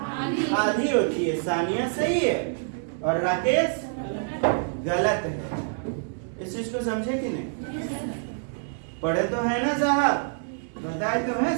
आधी होती है। सानिया सही है और राकेश गलत है। इस चीज को समझे कि नहीं? पढ़े तो है ना साहब, बताए तो है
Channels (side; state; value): left; silent; digital silence